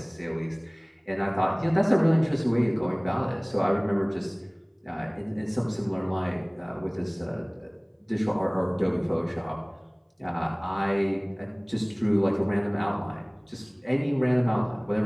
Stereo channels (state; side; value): identical; both; correlation 1.00